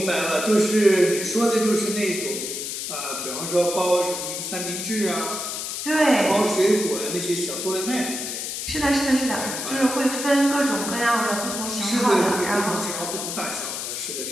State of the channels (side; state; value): left; noise; hiss, 5 dB below the sound